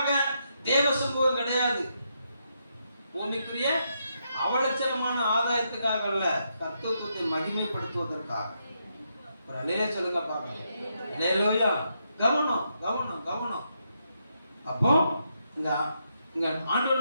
தேவ சமூகம் கிடையாது. பூமிக்குரிய அவலட்சணமான ஆதாயத்துக்காக அல்ல, கர்த்தத்துவத்தை மகிமைப்படுத்துவதற்காக. ஒரு அல்லேலூயா சொல்லுங்க பார்க்கலாம். அல்லேலூயா. கவனம் கவனம் கவனம். அப்போ இங்க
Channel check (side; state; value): both; inverted; correlation -0.80